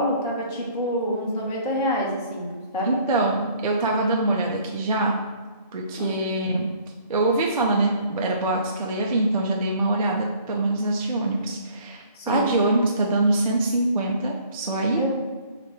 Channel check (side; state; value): both; inverted; correlation -0.57